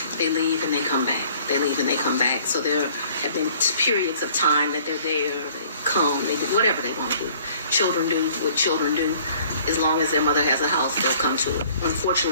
they leave and they come back. They leave and they come back. So there have been periods of time that they're there, they come, they do whatever they want to do. Children do what children do. As long as their mother has a house, they'll come to it.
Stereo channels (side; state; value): both; inverted; correlation -0.55